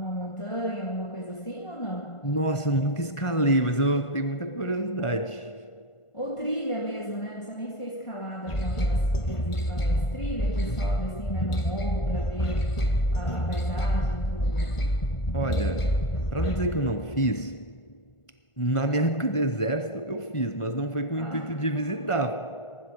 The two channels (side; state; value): right; late; 1.5 ms